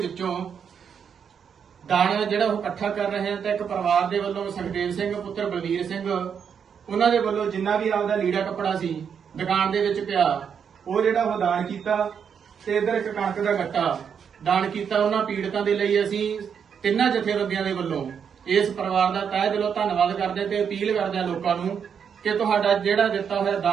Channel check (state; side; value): quieter; left; 7.3 dB